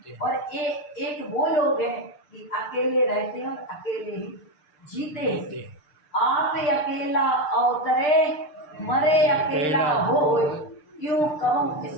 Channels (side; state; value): right; late; 6.7 ms